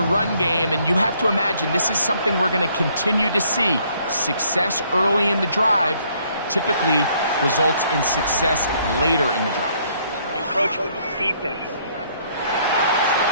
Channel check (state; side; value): inverted; both; correlation -0.66